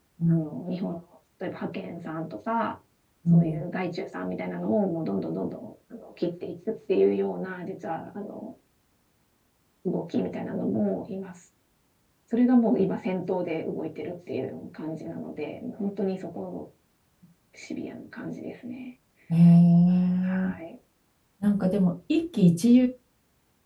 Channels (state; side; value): identical; both; correlation 1.00